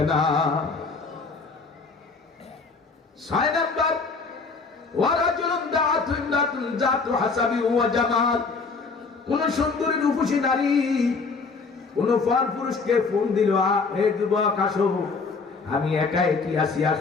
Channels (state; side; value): quieter; right; 4.5 dB